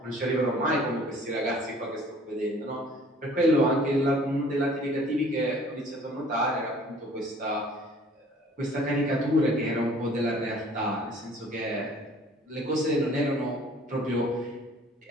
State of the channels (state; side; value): normal; both; correlation 0.53